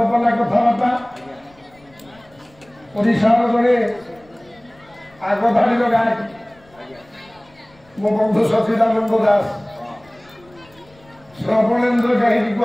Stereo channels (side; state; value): left; noise; rumble, 28 dB below the sound